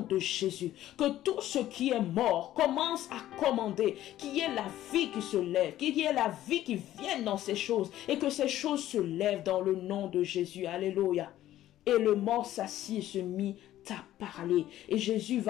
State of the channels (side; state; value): right; quieter; 13.5 dB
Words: de Jésus que tout ce qui est mort commence à commander, qu'il y ait la vie qui se lève, qu'il y ait la vie qui vienne dans ces choses et que ces choses se lèvent dans le nom de Jésus. Alléluia. Et le mort s'assit et se mit à parler. Et Jésus